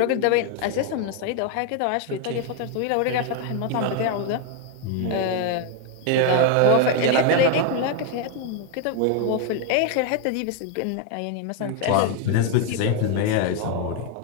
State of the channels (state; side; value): different; both; correlation 0.01